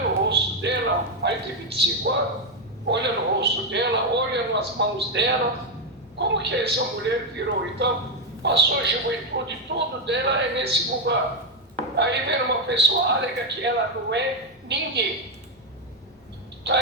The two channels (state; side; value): normal; both; correlation 0.05